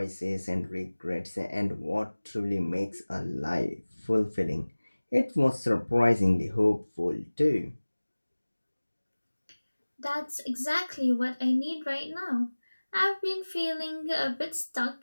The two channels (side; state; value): both; inverted; correlation -1.00